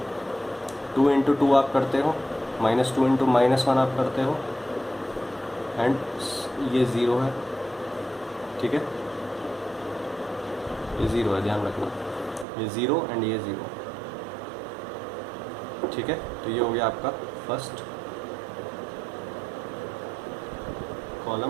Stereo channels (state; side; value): drops out; left; at 12.5 s